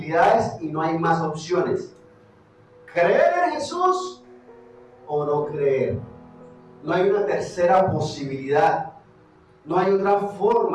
y no hay más opciones: creer en Jesús o no creer. No hay una tercera posibilidad. No hay otra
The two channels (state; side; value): identical; both; correlation 1.00